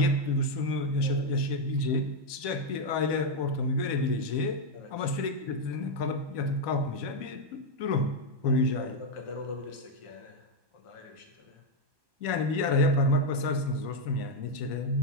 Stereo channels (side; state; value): left; late; 1.2 ms